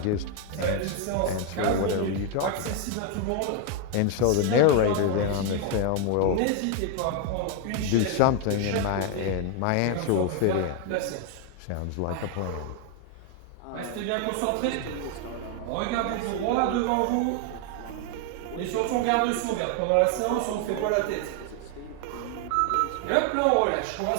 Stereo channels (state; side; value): different; both; correlation 0.00